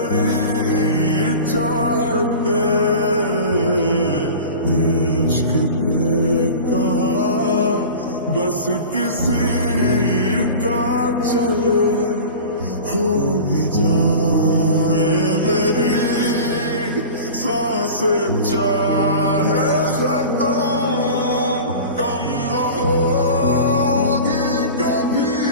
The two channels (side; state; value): both; inverted; correlation -0.36